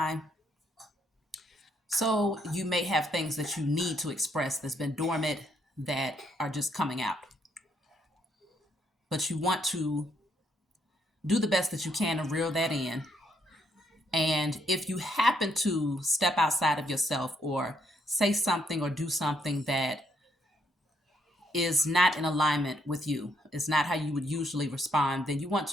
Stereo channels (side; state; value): both; normal; correlation 0.73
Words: So you may have things that you need to express that's been dormant that are just coming out. But you want to do the best that you can to reel that in. And if you happen to step outside of yourself or say something or do something that is not in alignment with you, it's not how you would usually respond, then you want